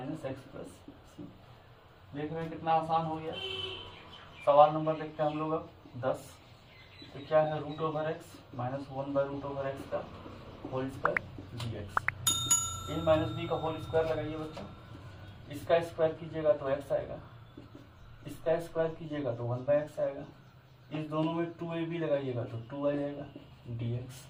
x plus C. देख रहे हैं कितना आसान हो गया। सवाल नंबर देखते हैं हम लोग अब 10। तो क्या है, root over x minus 1 by root over x का whole square d x. A minus b का होल स्क्वायर लगाइए बच्चों। इसका स्क्वायर कीजिएगा तो एक्स आएगा, इसका स्क्वायर कीजिएगा तो 1 बाई एक्स आएगा। इस दोनों में 2ab लगाइएगा तो 2 आ जाएगा डी एक्स।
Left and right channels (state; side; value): identical; both; correlation 1.00